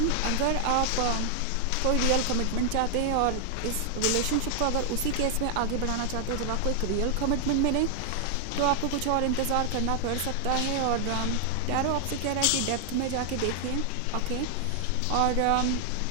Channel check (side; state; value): both; different; correlation 0.00